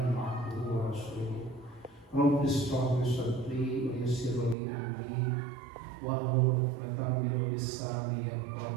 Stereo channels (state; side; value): drops out; left; at 4.5 s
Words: abduhu wa rasuluh. Rabbi shrah li sadri wa yassir li amri wahlul 'uqdatam min lisani